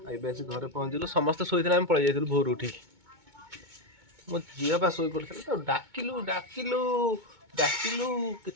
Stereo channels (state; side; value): late; left; 2.2 ms